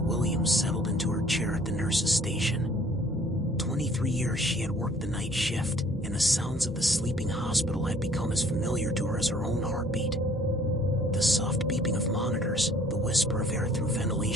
settled into her chair at the nurse's station. 23 years she had worked the night shift, and the sounds of the sleeping hospital had become as familiar to her as her own heartbeat. The soft beeping of monitors, the whisper of air through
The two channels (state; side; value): normal; both; correlation 0.57